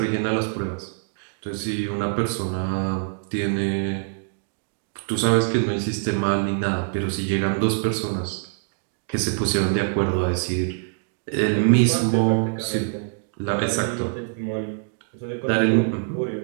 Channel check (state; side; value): silent; left; digital silence